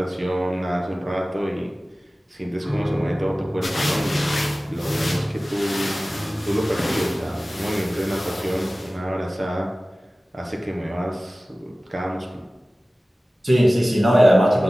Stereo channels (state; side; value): normal; both; correlation 0.97